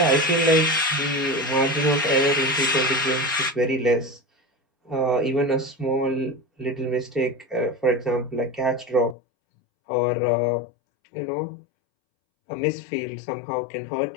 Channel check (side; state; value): right; drops out; at 9.2 s